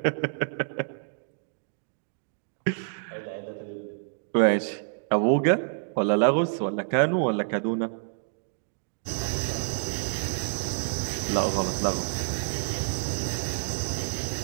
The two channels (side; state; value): left; silent; digital silence